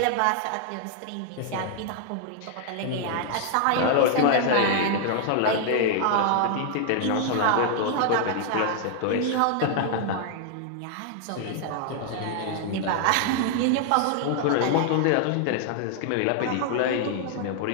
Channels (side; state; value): both; different; correlation 0.00